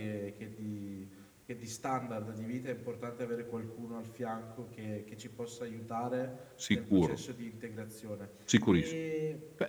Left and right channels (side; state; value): both; identical; correlation 1.00